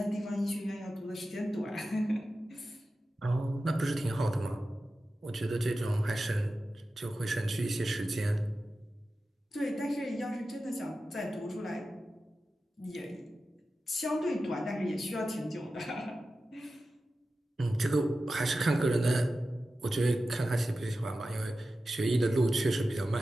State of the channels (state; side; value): normal; both; correlation 0.93